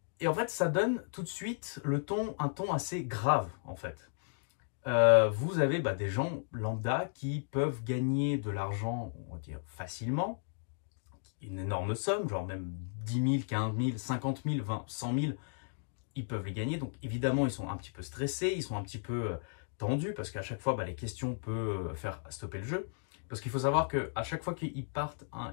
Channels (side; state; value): right; silent; digital silence